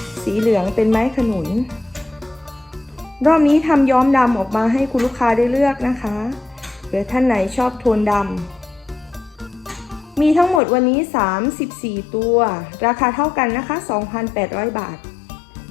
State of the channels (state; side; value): drops out; right; at 10.6 s